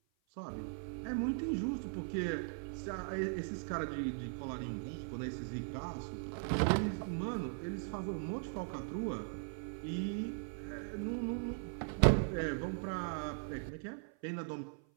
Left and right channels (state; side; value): silent; left; 52 dB below the other